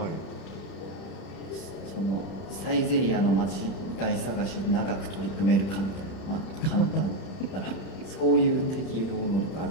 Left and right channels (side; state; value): right; late; 31 ms